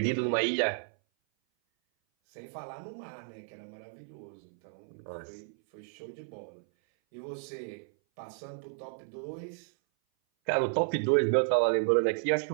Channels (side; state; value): left; silent; 56 dB below the other